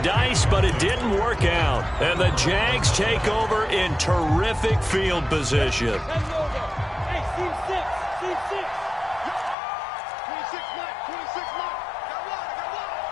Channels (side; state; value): right; drops out; at 9.6 s